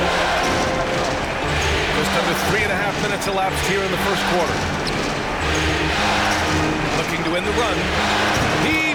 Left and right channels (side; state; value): both; identical; correlation 1.00